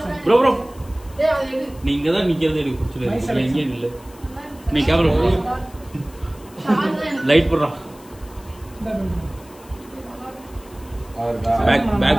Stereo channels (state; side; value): noise; left; hiss, 24 dB below the sound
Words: ப்ரோ ப்ரோ டேய் அது எடு. நீங்க தான் நிக்கிறது எனக்கு பிடிச்சல. நீங்க இல்ல. நீ கேமரா புறா. லைட் புறா. அவர்தா